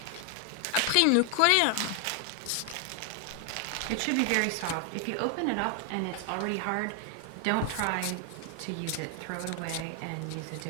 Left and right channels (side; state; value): both; different; correlation 0.00